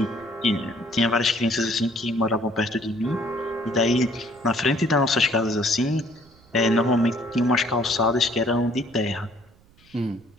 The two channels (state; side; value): noise; right; rumble, 29 dB below the sound